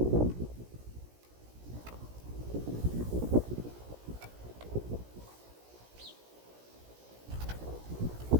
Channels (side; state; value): left; late; 17 ms